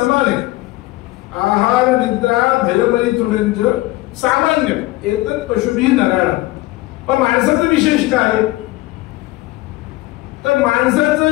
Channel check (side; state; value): right; quieter; 19.2 dB